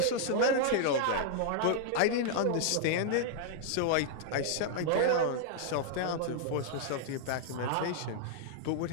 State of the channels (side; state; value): both; different; correlation -0.01